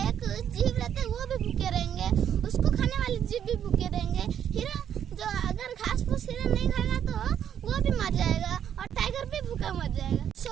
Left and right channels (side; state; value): left; quieter; 9.3 dB